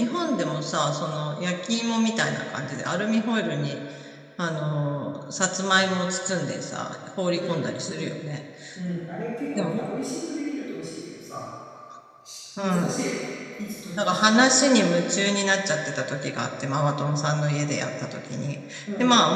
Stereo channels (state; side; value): identical; both; correlation 1.00